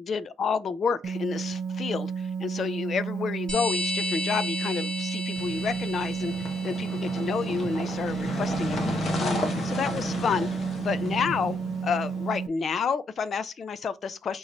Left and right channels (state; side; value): normal; both; correlation 0.74